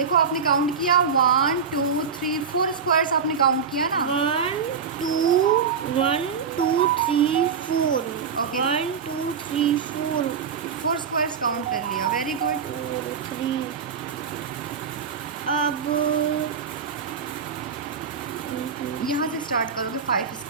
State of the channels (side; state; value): left; quieter; 6.1 dB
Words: आपने काउंट किया 1 2 3 4 स्क्वायर्स आपने काउंट किया ना। 1 2 3 4 Okay. 1 2 3 4 4 स्क्वायर्स काउंट कर लिया, वेरी गुड। 3। अब यहाँ से स्टार्ट करोगे, 5